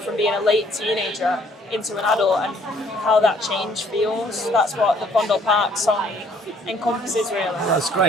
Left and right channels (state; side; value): normal; both; correlation 0.62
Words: being a late teenager into an adult and how that change feels. That's what the Vondel Park song encompasses really. That's